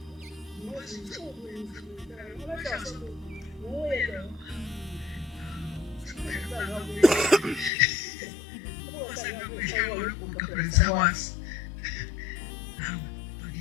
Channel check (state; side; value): drops out; right; at 7.7 s